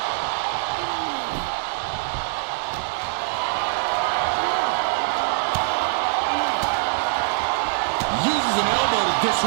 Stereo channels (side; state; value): left; silent; 63 dB below the other